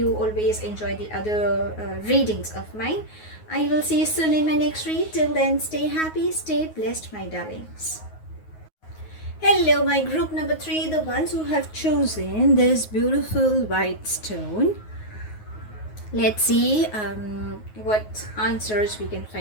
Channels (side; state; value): right; late; 9.4 ms